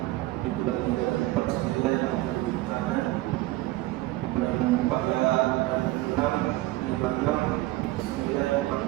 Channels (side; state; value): left; quieter; 18.3 dB